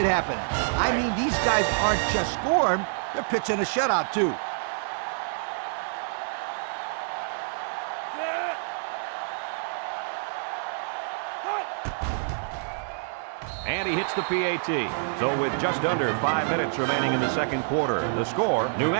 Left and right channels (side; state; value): left; silent; digital silence